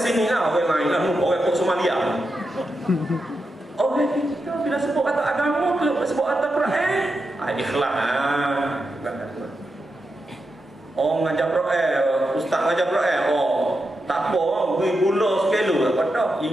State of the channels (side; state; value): both; normal; correlation 0.87